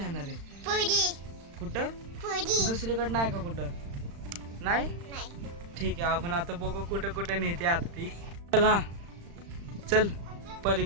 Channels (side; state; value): left; late; 35 ms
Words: आहे? कुठं? दुसरीकडे नाही का? कुठं नाही? ठीक आहे, आपण आता बघू कुठं कुठं नेते आता ती. चल हा, चल